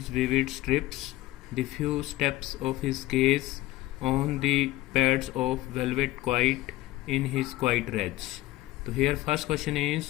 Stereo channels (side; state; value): right; quieter; 17.3 dB